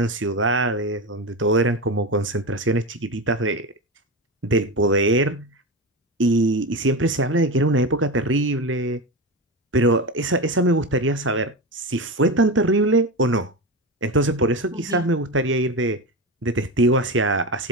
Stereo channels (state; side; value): normal; both; correlation 0.20